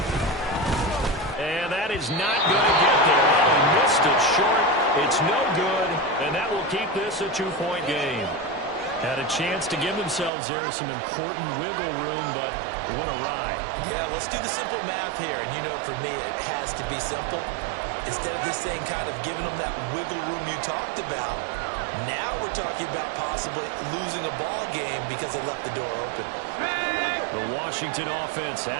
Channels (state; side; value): drops out; left; at 10.3 s